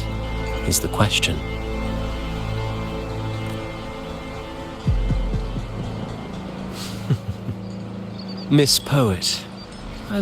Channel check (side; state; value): both; identical; correlation 1.00